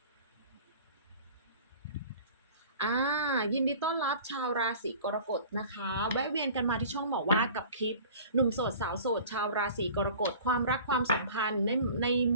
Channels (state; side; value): inverted; both; correlation -0.44